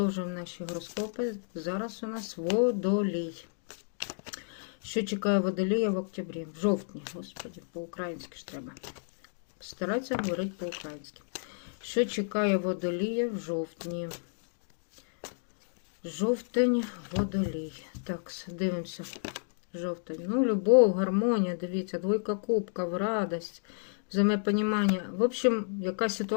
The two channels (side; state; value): right; silent; digital silence